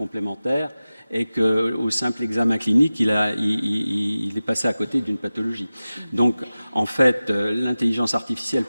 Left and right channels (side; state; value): both; inverted; correlation -0.96